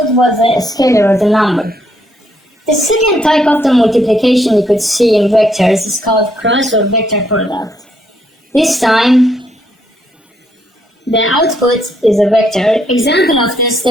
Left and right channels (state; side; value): normal; both; correlation 0.73